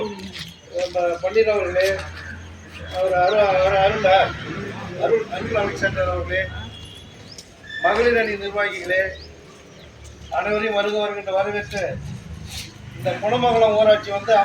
பன்னீர் அவர்களே, அருள் அலெக்சாண்டர் அவர்களே, மகளிர் அணி நிர்வாகிகளே, அனைவரையும் வருகின்ற வரவேற்று இந்த குணமங்கலம் ஊராட்சி வந்து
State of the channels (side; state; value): both; identical; correlation 1.00